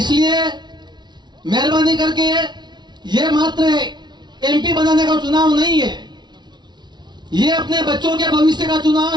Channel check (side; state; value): left; late; 0.21 ms